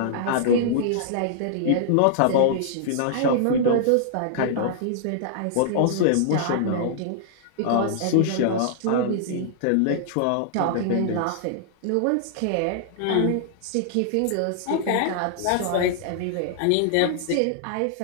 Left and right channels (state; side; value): different; both; correlation -0.01